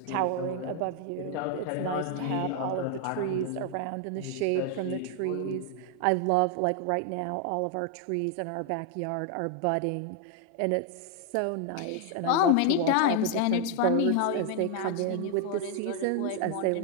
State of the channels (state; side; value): different; both; correlation 0.00